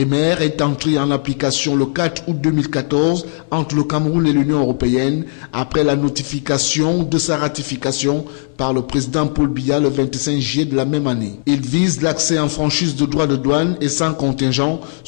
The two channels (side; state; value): right; silent; 56 dB below the other